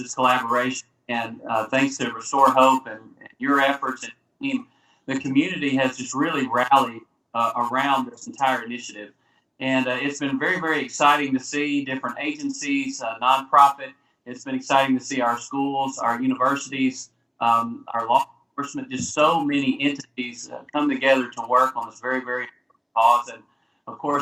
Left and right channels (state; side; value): identical; both; correlation 1.00